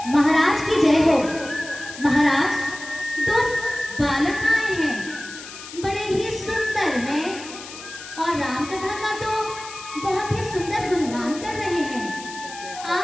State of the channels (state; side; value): noise; left; hiss, 14 dB below the sound